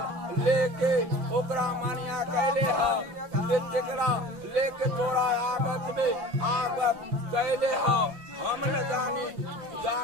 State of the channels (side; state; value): left; late; 6.1 ms